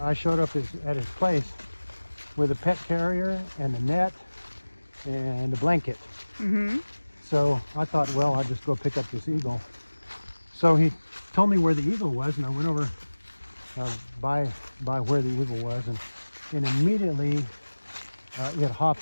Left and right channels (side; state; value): both; inverted; correlation -1.00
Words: showed up at his place with a pet carrier and a net and a blanket. So I thought, well, I'll just go pick up this eagle. So he told me where the eagle was, and I went over by where the eagle was, and immediately it